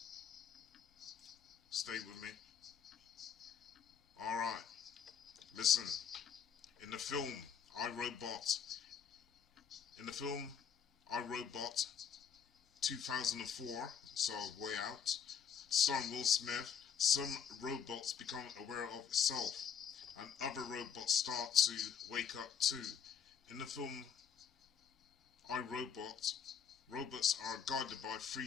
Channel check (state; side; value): quieter; right; 7.6 dB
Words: Stay with me. Alright. Listen. In the film, I, Robot. In the film, I, Robot, 2004, so way out, starring Will Smith, some robots become aware of itself, and other robots start to wake up too. In the film, I, Robot, robots are guided by 3